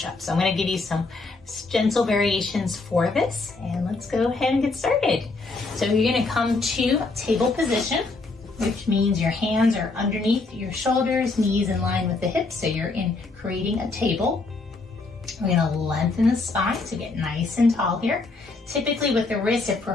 So I'm going to give you some gentle variations for this, and let's go ahead and get started. So you're going to come to table position, which means your hands are underneath your shoulders, knees in line with the hips. So you're creating a table. We're going to lengthen the spine to get nice and tall here. Typically with the wrists, if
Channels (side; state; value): right; quieter; 3.6 dB